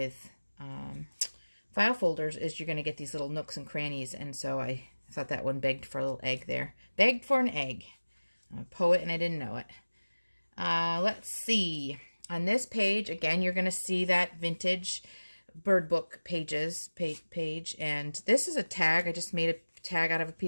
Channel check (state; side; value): inverted; both; correlation -1.00